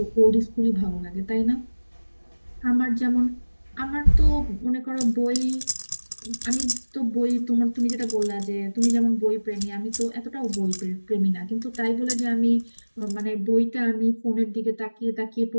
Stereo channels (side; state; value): both; inverted; correlation -1.00